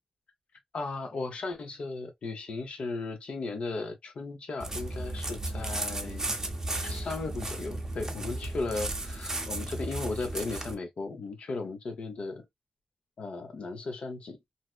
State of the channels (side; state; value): both; normal; correlation 0.71